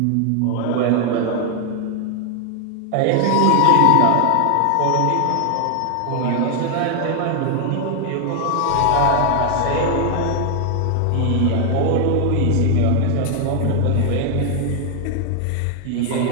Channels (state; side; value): different; both; correlation 0.00